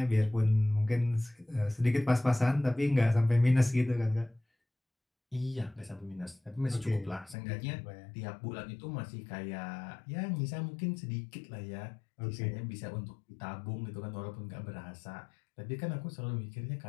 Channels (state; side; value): drops out; right; at 7.4 s